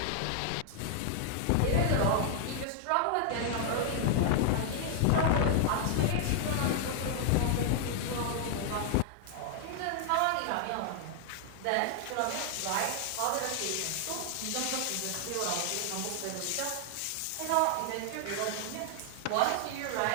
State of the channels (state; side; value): different; both; correlation 0.00